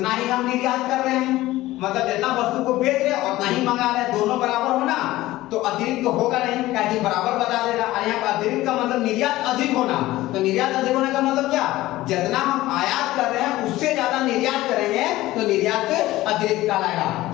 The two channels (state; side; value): quieter; right; 16.9 dB